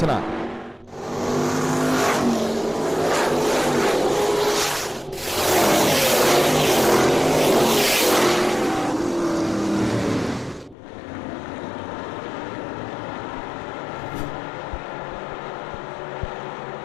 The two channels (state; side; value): drops out; right; at 10.8 s